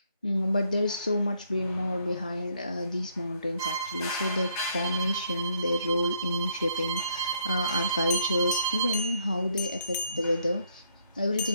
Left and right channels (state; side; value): inverted; both; correlation -0.70